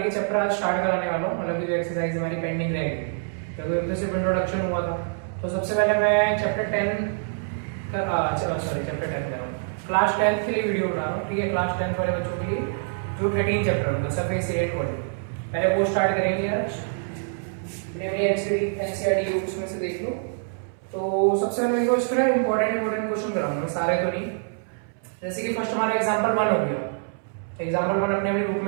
के चैप्टर आज स्टार्ट कराने वाला हूँ, मतलब जो एक्सरसाइज हमारी पेंडिंग रहेगी क्योंकि अब तो सिर्फ इंट्रोडक्शन हुआ था। तो सबसे पहले मैं चैप्टर 10 चैप्टर 10 कर रहा हूँ, क्लास 10 के लिए वीडियो बना रहा हूँ। ठीक है, क्लास 10 वाले बच्चों के लिए जो 13 चैप्टर होगा सरफेस एरिया इक्वालिटी, पहले वो स्टार्ट करेंगे यार। एनसीईआरटी बुक्स में से देख लो। तो सबसे पहले देखो इसमें इंपॉर्टेंट क्वेश्चन कराऊंगा, सारे तो नहीं। जैसे कि फर्स्ट हमारा एग्जांपल 1 हो गया, एग्जांपल 1 अपने बुक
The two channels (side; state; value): left; silent; 61 dB below the other